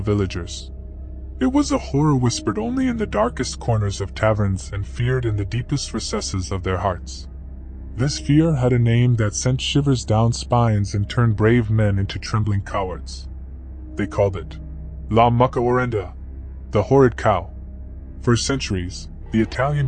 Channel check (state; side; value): identical; both; correlation 1.00